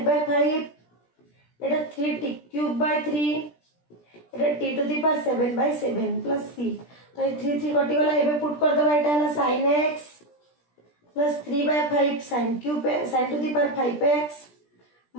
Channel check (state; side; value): late; right; 17 ms